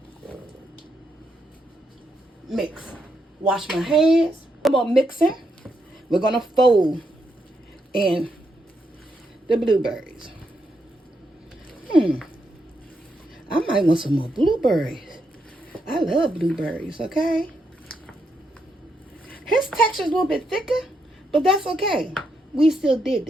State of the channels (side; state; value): both; normal; correlation 0.80